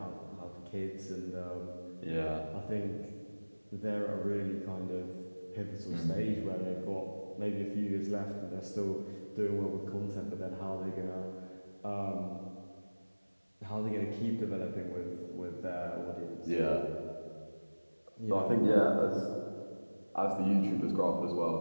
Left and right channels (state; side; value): inverted; both; correlation -1.00